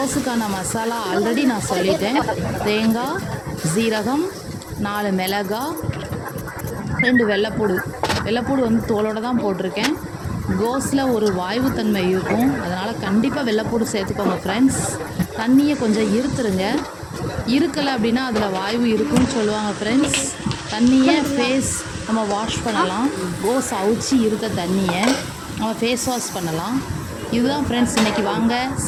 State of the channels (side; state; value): both; identical; correlation 1.00